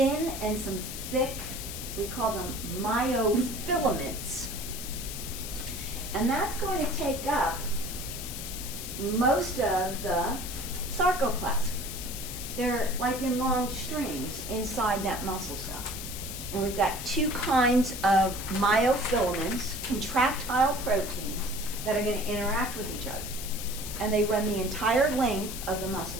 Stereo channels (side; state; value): left; noise; hiss, 8 dB below the sound